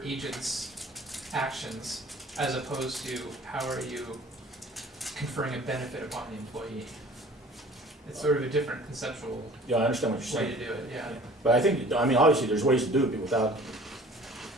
agent's actions as opposed to how are you conferring a benefit upon the employee. It's sort of a different conceptual Yeah, I understand what you're way saying. to do it, yeah. But I think, I mean, obviously, there's ways to do it without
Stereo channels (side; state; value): both; normal; correlation 0.48